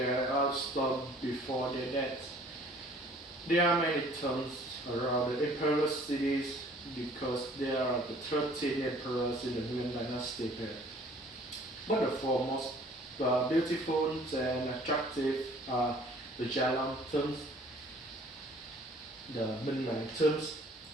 stone before their death. There are many tombs around the emperor cities because there are the 13 emperors in the Nguyen dynasty period. But the four most beautiful and attractive are the Jalan tombs, the Minh Mạng tombs,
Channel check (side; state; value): both; normal; correlation 0.54